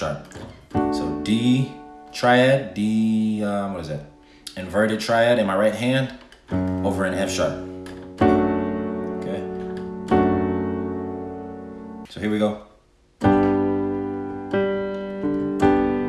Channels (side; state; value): both; identical; correlation 1.00